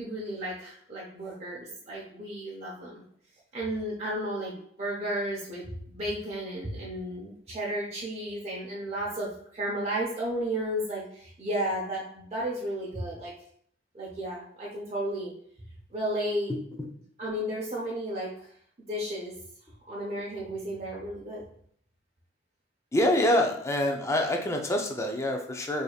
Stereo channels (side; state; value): both; normal; correlation 0.44